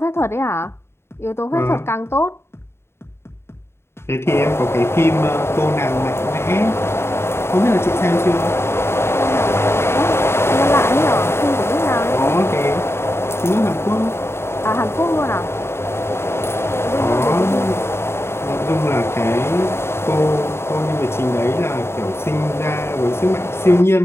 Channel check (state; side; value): late; right; 0.12 ms